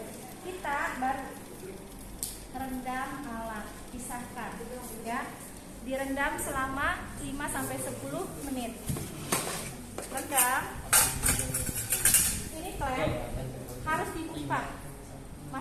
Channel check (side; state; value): both; identical; correlation 1.00